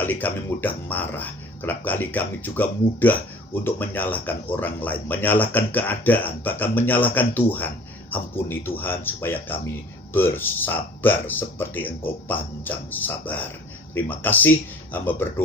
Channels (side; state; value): both; normal; correlation 0.47